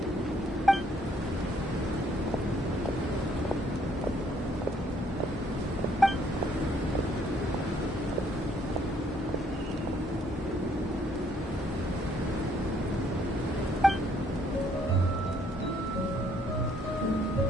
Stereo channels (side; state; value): both; normal; correlation 0.66